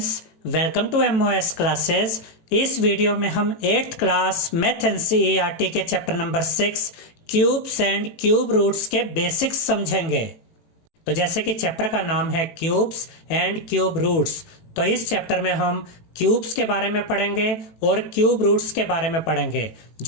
welcome to MOS classes. इस video में हम 8th क्लास मैथ एनसीईआरटी के chapter number 6 cubes and cube roots के basics समझेंगे। तो जैसे कि चैप्टर का नाम है क्यूब्स एंड क्यूब रूट्स, तो इस चैप्टर में हम क्यूब्स के बारे में पढ़ेंगे और क्यूब रूट्स के बारे में पढ़ेंगे।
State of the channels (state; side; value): late; right; 18 ms